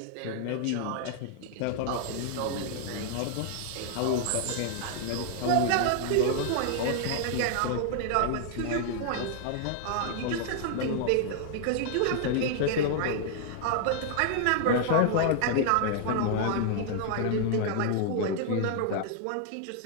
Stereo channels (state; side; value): different; both; correlation 0.00